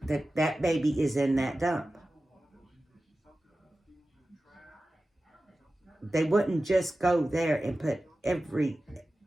that baby is in that dump. They wouldn't just go there and put every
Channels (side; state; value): both; normal; correlation 0.95